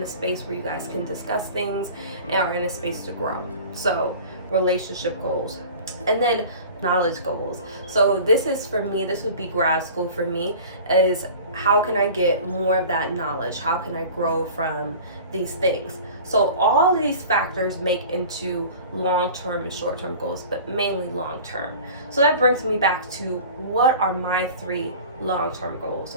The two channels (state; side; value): inverted; both; correlation -0.40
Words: a space where you guys can discuss things and are in a space to grow. So relationship goals. And then knowledge goals. So this is for me, this would be grad school for me, is how can I get more of that knowledge? How can I grow from these things? So all of these factors make into long-term and short-term goals, but mainly long-term. So that brings me back to what are my 3 long-term goals,